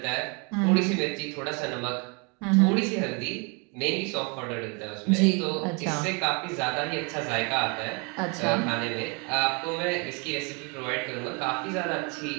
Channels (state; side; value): quieter; left; 32.6 dB